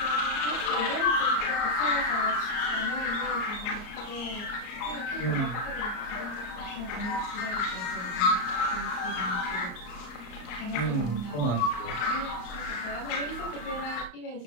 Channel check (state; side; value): late; right; 34 ms